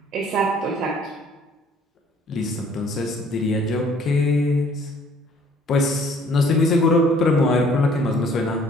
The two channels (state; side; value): normal; both; correlation 0.58